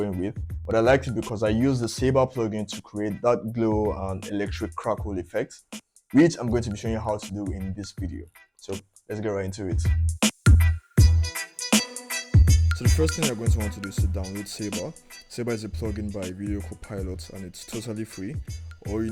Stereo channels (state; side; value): identical; both; correlation 1.00